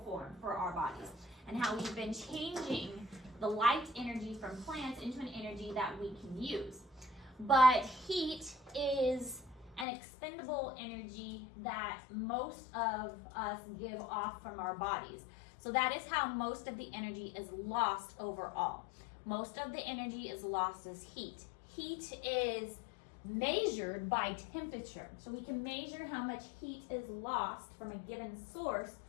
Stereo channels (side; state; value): right; drops out; at 9.9 s